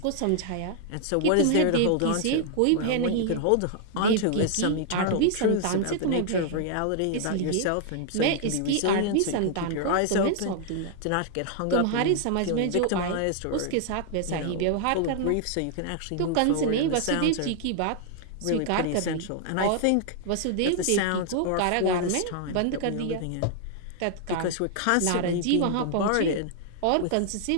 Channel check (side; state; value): both; different; correlation 0.00